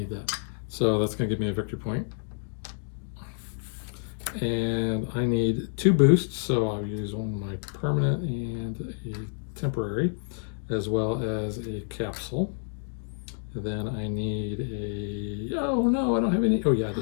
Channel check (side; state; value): right; silent; digital silence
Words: that. So that's going to give me a victory point. And I need 2 boosts, so I'll use one of my permanent and a temporary, as well as a capsule. And then I need a, oh no, I don't have any, oh yeah, I